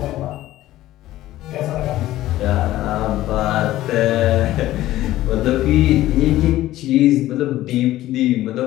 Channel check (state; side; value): quieter; right; 15.1 dB